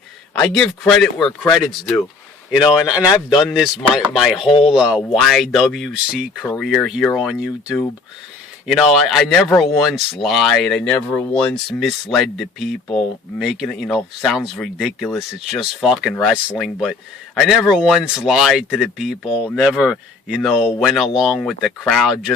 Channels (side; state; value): right; quieter; 4.1 dB